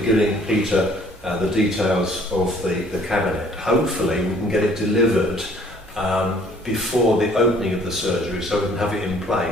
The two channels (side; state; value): both; normal; correlation 0.58